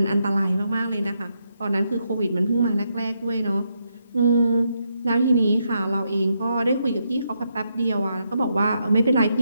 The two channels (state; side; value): inverted; both; correlation -0.80